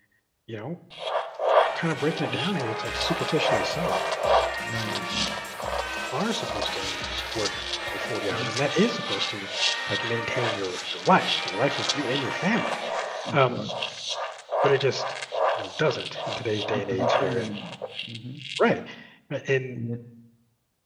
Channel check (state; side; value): identical; both; correlation 1.00